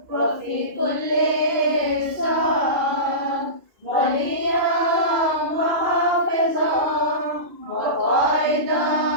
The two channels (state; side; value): late; left; 2.5 ms